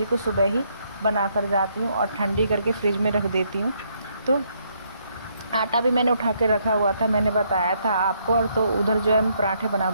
को सुबह ही बना कर जाती हूँ और ठंडी करके फ्रिज में रख देती हूँ। तो आटा भी मैंने उठा के रखा हुआ था, मैंने बताया था आपको। और तो उधर जो है मैं पराठे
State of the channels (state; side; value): inverted; both; correlation -0.72